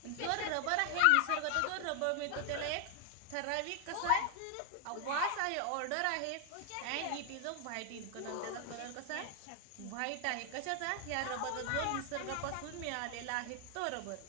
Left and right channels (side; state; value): both; different; correlation 0.00